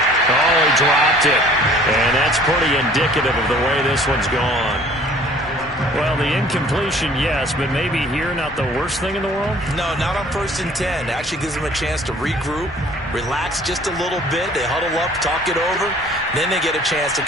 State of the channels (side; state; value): both; normal; correlation 0.52